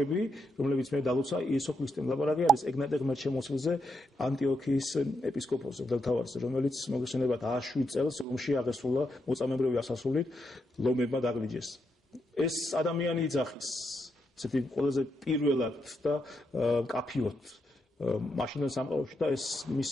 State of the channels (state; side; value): normal; both; correlation 0.81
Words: რომლებიც მე დალოცა იესო ქრისტემ, ლაპარაკი არის ეგნატე ღმერთშემოსილზე, ანტიოქიის ეპისკოპოსზე, მღვდელმთავარზე, რომელიც მოგესალმებათ 107 წელს რომში აღესრულა მოწამეებრივი ასასრულით, ლომებმა დაგლიჯეს. ეს ადამიანი იძახის, ესეთი ყველაზე პირველად და მკაფიოდ მაშინდელ სამყაროში და ეს